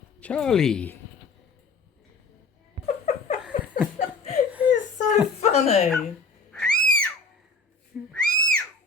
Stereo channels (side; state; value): right; quieter; 3.9 dB